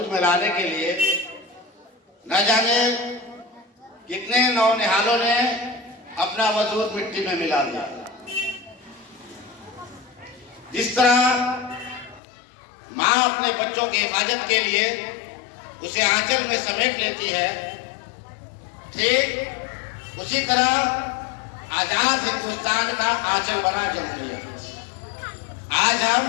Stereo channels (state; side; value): drops out; right; at 12.2 s